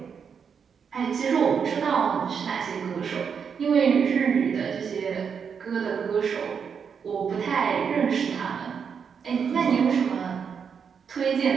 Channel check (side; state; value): left; quieter; 6.7 dB